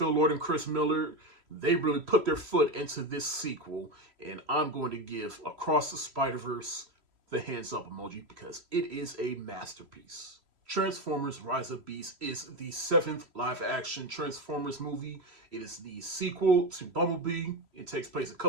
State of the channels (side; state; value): left; late; 3.0 ms